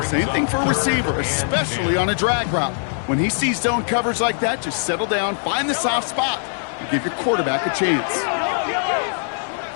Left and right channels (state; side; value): silent; right; 57 dB below the other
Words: Same thing for a receiver, especially on a drag route. When he sees zone coverage like that, just settle down, find the soft spot, and give your quarterback a chance.